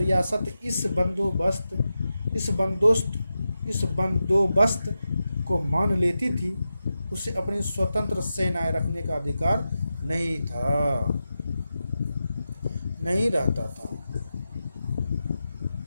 इस बंदोबस्त को मान लेती थी उसे अपनी स्वतंत्र सेनाएं रखने का अधिकार नहीं रहता था।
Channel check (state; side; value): inverted; both; correlation -0.91